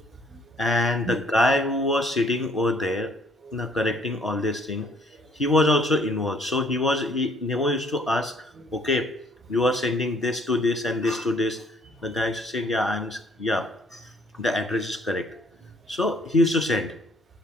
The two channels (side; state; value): both; normal; correlation 0.62